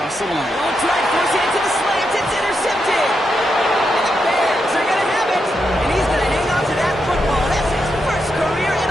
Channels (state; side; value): normal; both; correlation 0.84